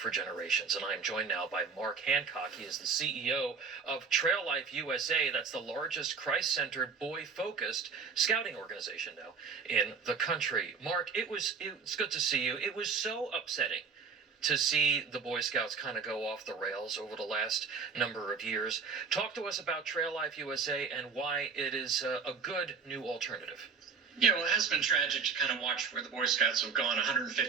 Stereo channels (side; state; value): left; quieter; 5.6 dB